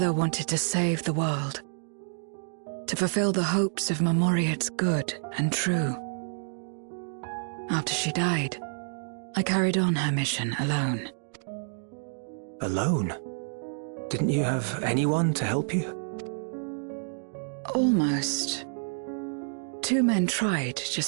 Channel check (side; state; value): left; silent; digital silence